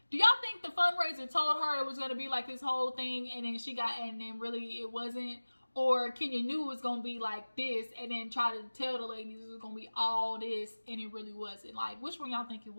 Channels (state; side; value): inverted; both; correlation -1.00